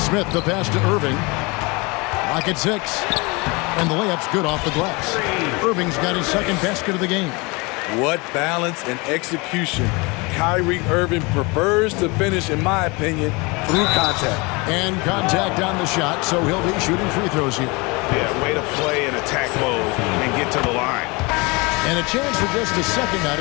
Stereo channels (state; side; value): quieter; right; 26.8 dB